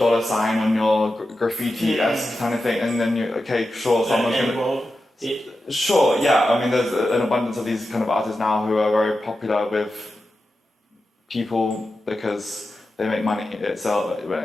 sign on your graffiti-esque kind of thing, and then someone's gonna... Sure, yeah, I mean, there's an abundance of these kind of artists now who are very popular with people because they make money itself.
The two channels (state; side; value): normal; both; correlation 0.91